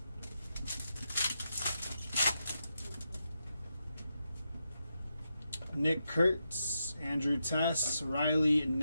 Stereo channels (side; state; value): both; inverted; correlation -0.85